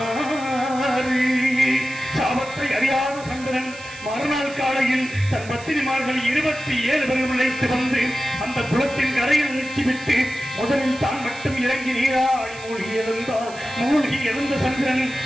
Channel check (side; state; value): right; noise; hiss, 18 dB below the sound